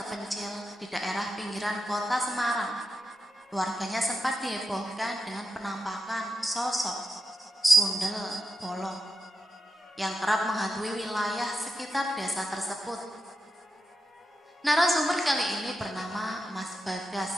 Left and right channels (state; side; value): normal; both; correlation 0.87